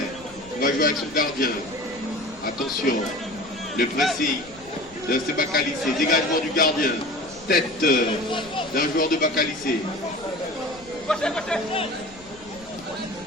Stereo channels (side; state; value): left; noise; rumble, 23 dB below the sound